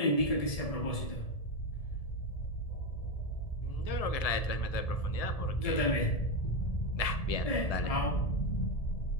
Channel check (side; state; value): right; late; 1.7 ms